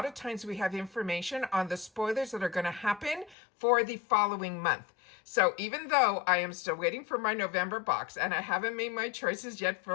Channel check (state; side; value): drops out; right; at 3.4 s